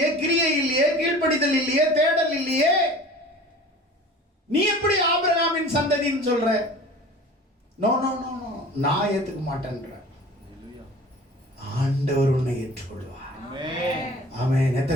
கிரியை இல்லையே, கீழ்ப்படிதல் இல்லையே, தேடல் இல்லையே. நீ எப்படி ஆபிரகாமின் சந்ததின்னு சொல்ற? நோ நோ நோ நோ, நான் ஏத்துக்க மாட்டேன்ற. ஆண்டவர் உன்னை ஏற்றுக்கொள்வார். ஆமென்.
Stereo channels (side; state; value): both; normal; correlation 0.42